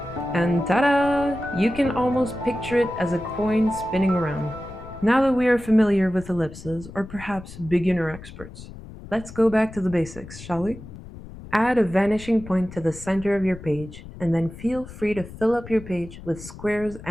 And ta-da! You can almost picture it as a coin spinning around. Now that we are familiar with ellipses, or perhaps beginner experts, let's go back to the basics, shall we? Add a vanishing point to the center of your page, and then feel free to fill up your page with squares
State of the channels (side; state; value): left; noise; rumble, 15 dB below the sound